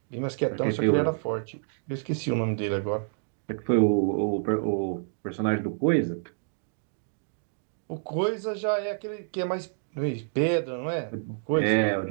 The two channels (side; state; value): left; silent; digital silence